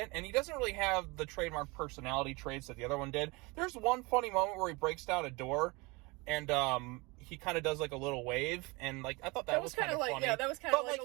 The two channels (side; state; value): left; quieter; 25.8 dB